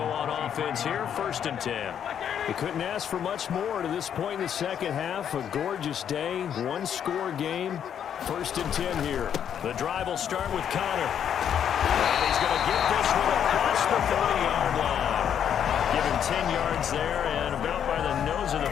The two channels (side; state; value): right; quieter; 8.9 dB